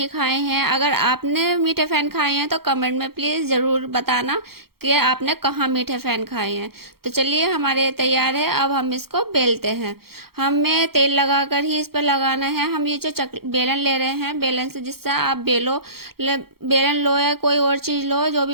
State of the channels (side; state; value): left; late; 0.95 ms